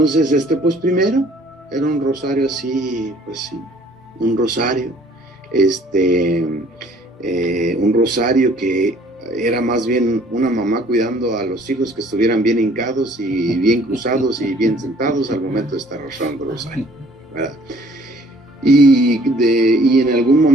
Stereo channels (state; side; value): normal; both; correlation 0.57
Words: pues primero era un rosario así, pues sí, un rosario, un rosario que era más bien una mamá cuidando a los hijos que estuvieran bien hincados y bien cruzados y bien sentados al momento de estar rezando el rosario, ¿verdad? Y en algún